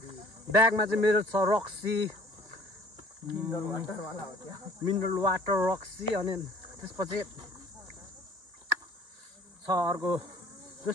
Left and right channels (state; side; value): late; left; 1.9 ms